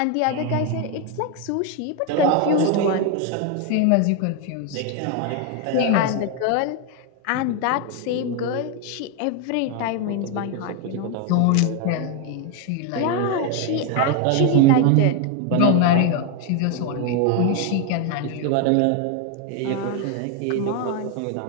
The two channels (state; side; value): different; both; correlation 0.01